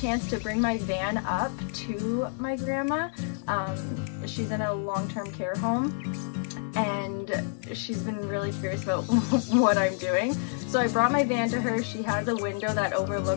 to bring my van up to my grandma. She's in a long-term care home, and she's been really curious about what I'm doing. So I brought my van to her. She has a window that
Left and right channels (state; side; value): silent; right; digital silence